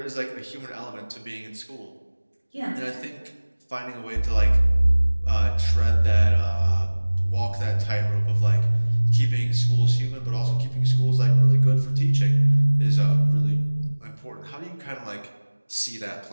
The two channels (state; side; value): inverted; both; correlation -1.00